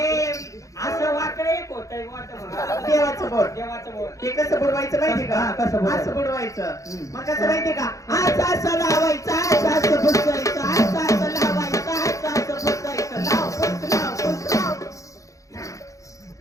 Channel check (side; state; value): right; late; 0.16 ms